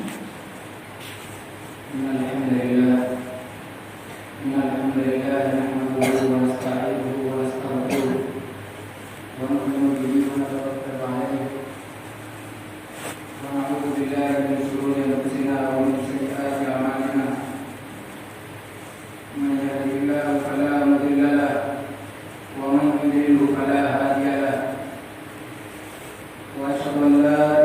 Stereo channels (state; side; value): identical; both; correlation 1.00